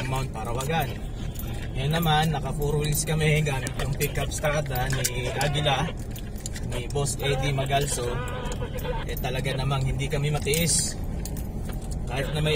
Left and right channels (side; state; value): both; identical; correlation 1.00